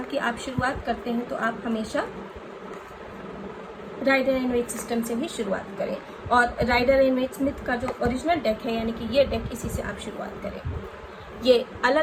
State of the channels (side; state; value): both; identical; correlation 1.00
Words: कि आप शुरुआत करते हैं तो आप हमेशा राइडर एंड वेट सिस्टम से ही शुरुआत करें और राइडर एंड वेट स्मिथ का जो ओरिजिनल डेक है, यानी कि ये डेक, इसी से आप शुरुआत करें। ये